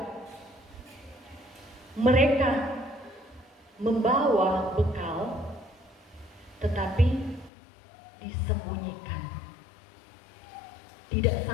mereka membawa bekal tetapi disembunyikan, tidak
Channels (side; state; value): right; drops out; at 7.5 s